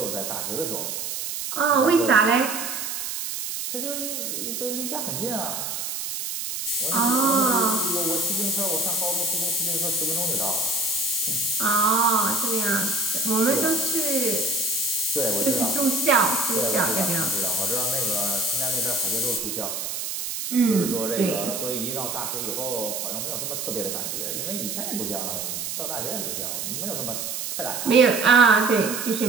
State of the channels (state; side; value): noise; right; hiss, 4 dB below the sound